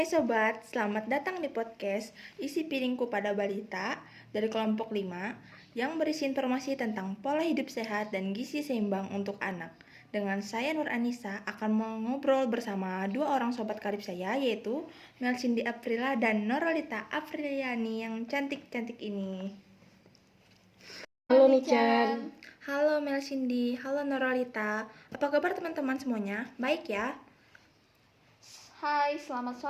sobat, selamat datang di podcast Isi Piringku pada Balita dari kelompok 5 yang berisi informasi tentang pola hidup sehat dan gizi seimbang untuk anak. Dengan saya Nur Anissa akan mengobrol bersama dua orang sobat karib saya, yaitu Mel Cindy Aprila dan Norolita Apriliani yang cantik-cantik ini. Halo Nichan. Halo Mel Cindy, halo Norolita. Apa kabar teman-teman semuanya? Baik ya? Hai, selamat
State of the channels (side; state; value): both; identical; correlation 1.00